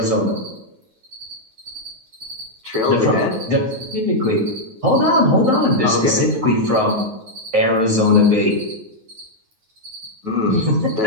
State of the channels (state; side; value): late; left; 9.3 ms